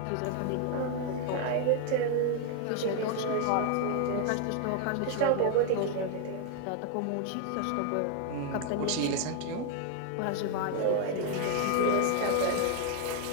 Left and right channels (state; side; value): different; both; correlation 0.01